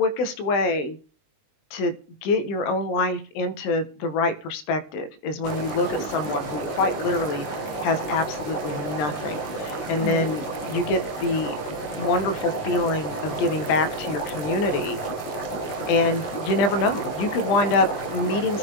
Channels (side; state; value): right; late; 19 ms